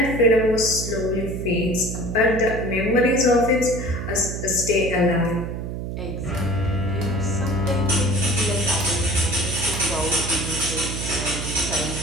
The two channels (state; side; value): noise; right; hum, 5 dB below the sound